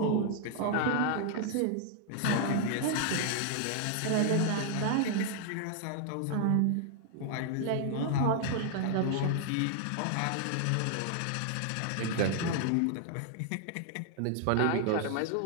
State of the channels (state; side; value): different; both; correlation 0.00